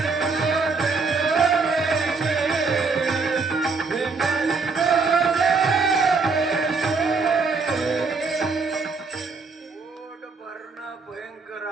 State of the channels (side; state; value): left; quieter; 4.4 dB